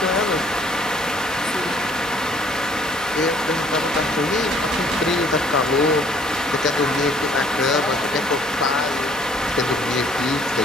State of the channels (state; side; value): normal; both; correlation 0.60